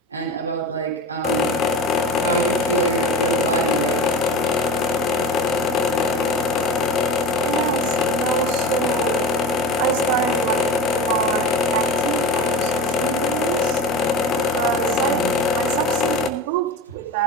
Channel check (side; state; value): both; normal; correlation 0.29